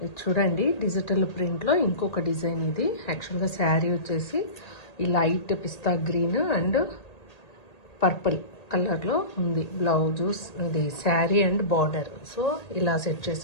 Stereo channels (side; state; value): right; late; 1.8 ms